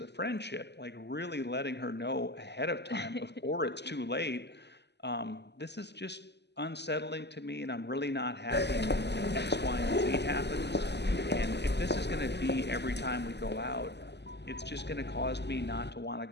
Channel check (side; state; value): right; late; 0.50 ms